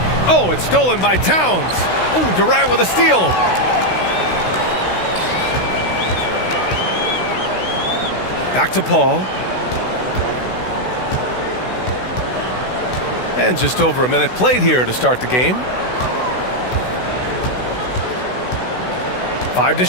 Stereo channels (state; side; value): late; right; 16 ms